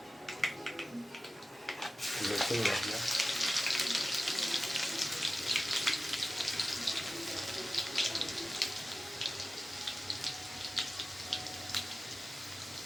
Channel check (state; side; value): normal; both; correlation 0.95